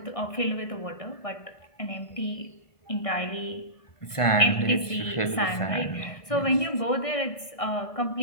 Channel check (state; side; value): late; right; 1.6 ms